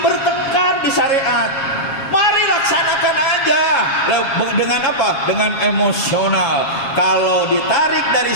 di syariat. Mari laksanakan aja. Dengan apa? Dengan emosional. Kalau ditarik dari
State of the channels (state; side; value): late; right; 7.3 ms